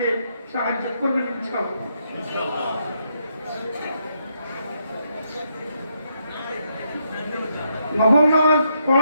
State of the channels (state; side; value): inverted; both; correlation -0.77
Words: সাহায্য করবেন ইনশাআল্লাহ। নফল নামাজ